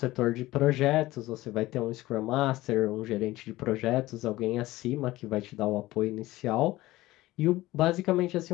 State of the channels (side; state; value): right; quieter; 17.7 dB